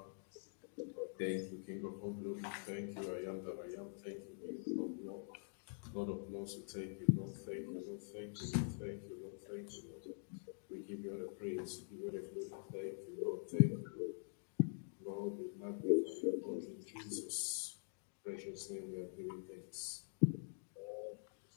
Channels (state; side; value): silent; right; digital silence